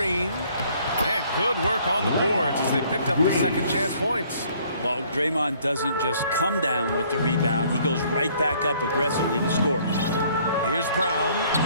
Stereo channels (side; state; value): both; inverted; correlation -0.60